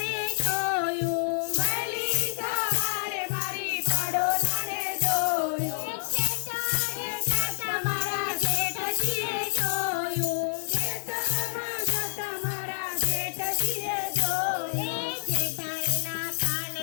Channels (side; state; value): right; silent; digital silence